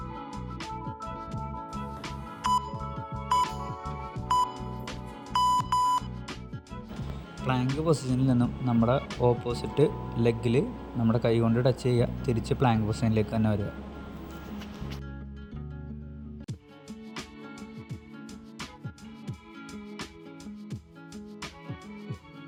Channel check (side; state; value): both; identical; correlation 1.00